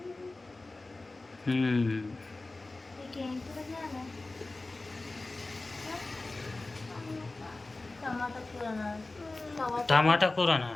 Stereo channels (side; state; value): right; quieter; 3.2 dB